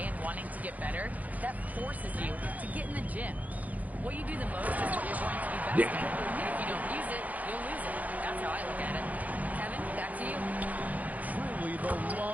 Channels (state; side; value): late; left; 0.076 ms